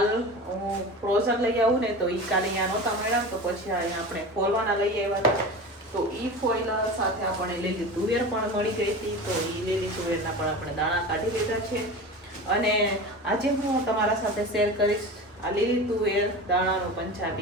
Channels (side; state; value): both; normal; correlation 0.31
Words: હું ફ્રોઝન લઈ આવું ને, તો એ કાલે અહીંયા નહોતા મળ્યા, તો પછી અહીંયા આપણે ફોલવાના લઈ આવ્યા હતા। તો એ ફોઇલ સાથે આપણે લીલી તુવેર પણ મળી ગઈ હતી, તો એ લીલી તુવેરના પણ આપણે દાણા કાઢી લીધા છે। અને આજે હું તમારા સાથે શેર કરીશ આ લીલી તુવેર દાણાનું